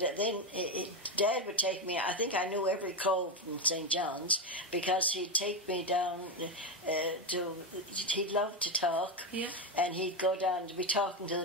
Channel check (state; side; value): normal; both; correlation 0.10